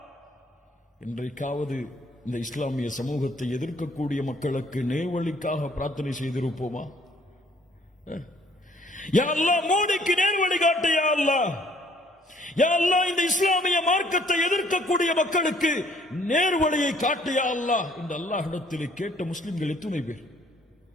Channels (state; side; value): normal; both; correlation 0.61